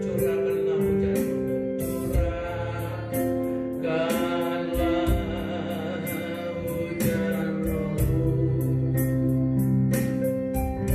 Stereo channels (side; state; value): both; identical; correlation 1.00